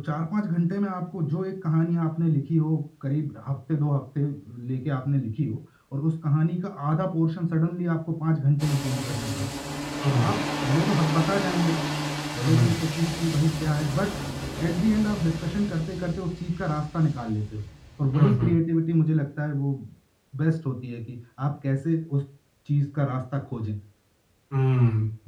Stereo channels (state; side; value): identical; both; correlation 1.00